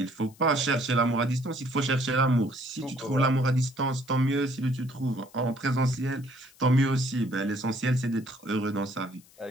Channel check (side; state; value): left; noise; hiss, 27 dB below the sound